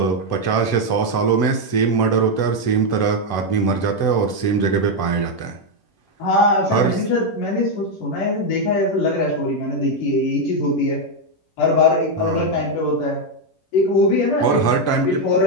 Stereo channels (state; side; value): late; right; 10 ms